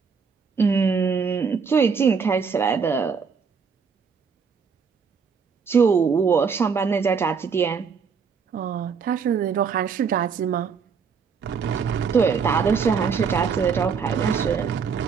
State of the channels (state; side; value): quieter; left; 5.9 dB